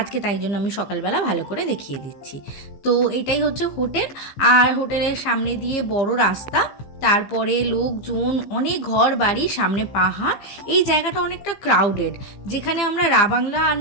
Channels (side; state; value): right; late; 15 ms